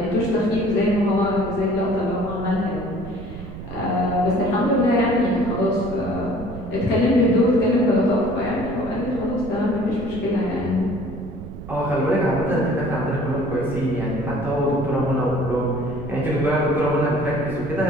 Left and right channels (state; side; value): noise; right; rumble, 12 dB below the sound